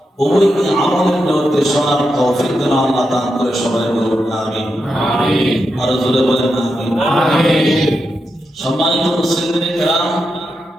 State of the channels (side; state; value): both; normal; correlation 0.86